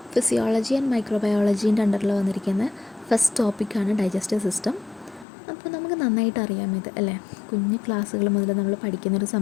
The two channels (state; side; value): drops out; right; at 5.2 s